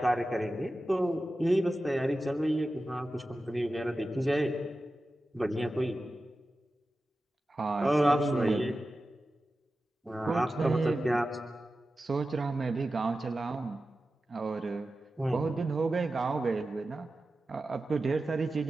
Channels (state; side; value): normal; both; correlation 0.93